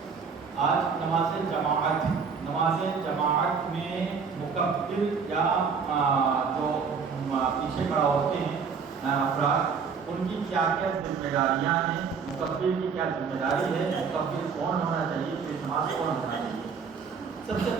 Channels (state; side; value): quieter; left; 5.8 dB